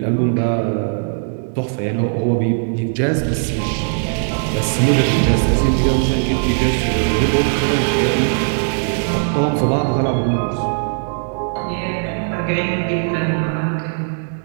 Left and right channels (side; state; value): left; silent; digital silence